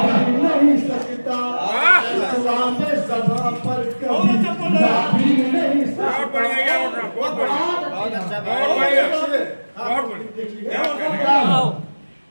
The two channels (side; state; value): both; inverted; correlation -1.00